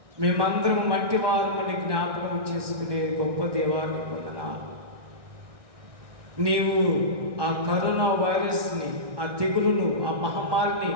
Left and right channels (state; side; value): late; left; 1.6 ms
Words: మేమందరం మట్టి వారమని జ్ఞాపకం చేసుకునే గొప్ప దేవాన్ని పొందనా. నీవు ఆ కరోనా వైరస్ని, ఆ తెగులును, ఆ మహమ్మారిని